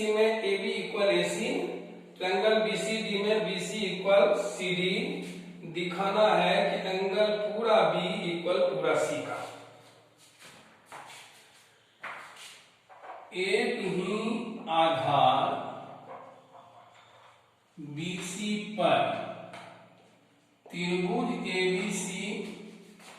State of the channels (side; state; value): both; identical; correlation 1.00